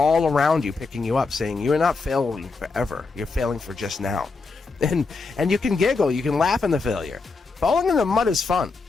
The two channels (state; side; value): quieter; right; 4.2 dB